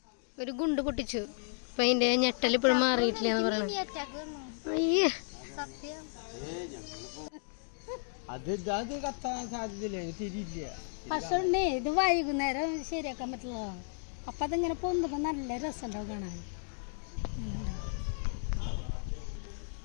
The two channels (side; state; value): right; silent; digital silence